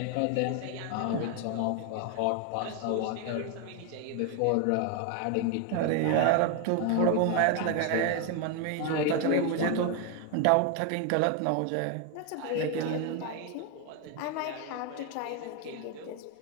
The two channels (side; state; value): both; different; correlation 0.01